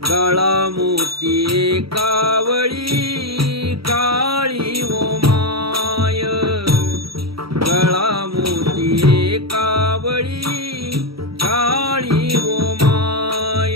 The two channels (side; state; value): left; late; 0.75 ms